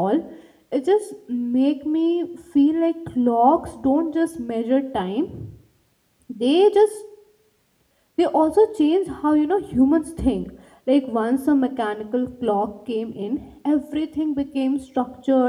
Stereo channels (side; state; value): both; identical; correlation 1.00